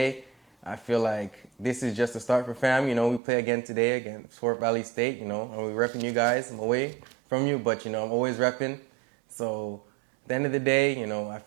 I feel like this is just a start for fam. You know, we play again today against Fort Valley State, you know, and we're repping you guys. I'm away from you, but, you know, I'm always repping. So at the end of the day, you know, I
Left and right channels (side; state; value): left; drops out; at 3.2 s